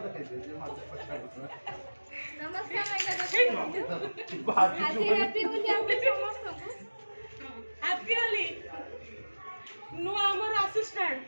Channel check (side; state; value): both; inverted; correlation -1.00